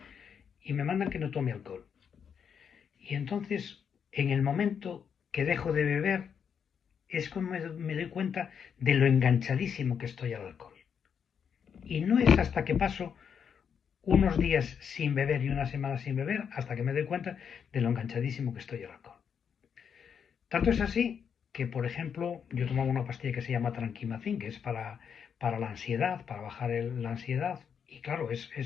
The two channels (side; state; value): right; quieter; 7.3 dB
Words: y me mandan que no tome alcohol. Y entonces, en el momento que dejo de beber, es como me doy cuenta de lo enganchadísimo que estoy al alcohol. Y no es hasta que paso unos días sin beber y una semana sin beber hasta que me doy cuenta de lo enganchadísimo que estoy al alcohol. Tanto es así que, por ejemplo, yo tomaba una pastilla que se llama Tranquimacin, que es para la ansiedad, para bajar la ansiedad. Y claro,